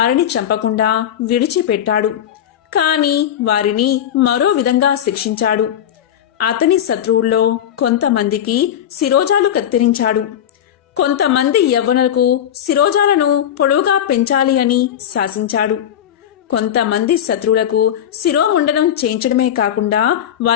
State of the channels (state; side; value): quieter; right; 10.2 dB